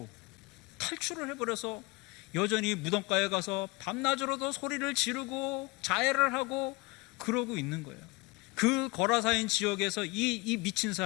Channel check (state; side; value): quieter; right; 24.8 dB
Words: 탈출을 해버려서 여전히 무덤가에 가서 밤낮으로도 소리를 지르고 자해를 하고 그러고 있는 거예요. 그 거라사인 지역에서 이 미친